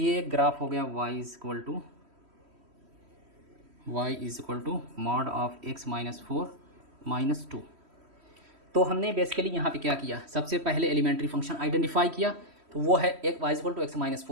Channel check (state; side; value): late; left; 3.1 ms